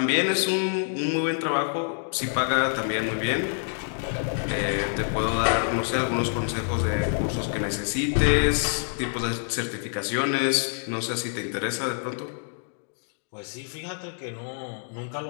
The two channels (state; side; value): silent; right; 60 dB below the other